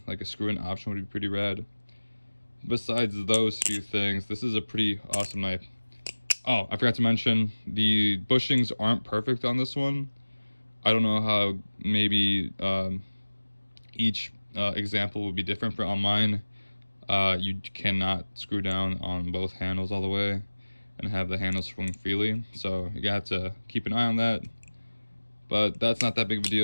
like a screw-in option would be pretty rad. Besides those few things, this is a pretty awesome knife. Oh, I forgot to mention, the bushings aren't perfect on this one. I don't know how, maybe each example would be different. On mine, you cannot screw down on both handles all the way and have the handles swing freely, so you have to keep an eye on that. But that's not that big of a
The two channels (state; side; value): inverted; both; correlation -1.00